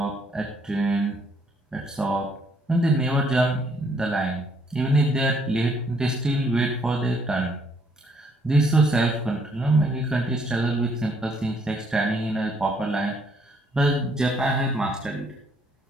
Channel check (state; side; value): normal; both; correlation 0.68